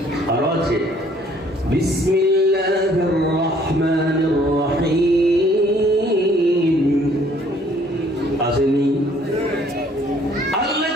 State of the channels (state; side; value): normal; both; correlation 0.60